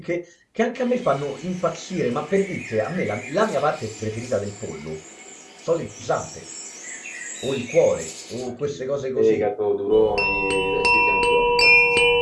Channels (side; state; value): both; identical; correlation 1.00